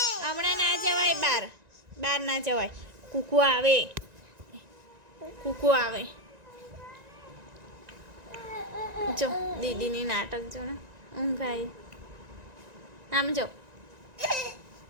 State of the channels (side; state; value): left; late; 1.9 ms